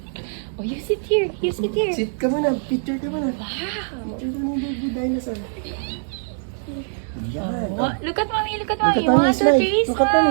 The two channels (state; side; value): silent; left; digital silence